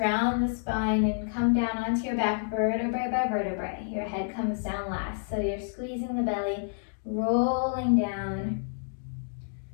the spine and come down onto your back, vertebrae by vertebrae. Your head comes down last, so you're squeezing the belly, rolling down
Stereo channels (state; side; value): silent; right; digital silence